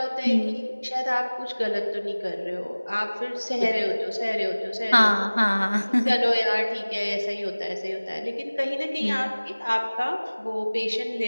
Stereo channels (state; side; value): inverted; both; correlation -1.00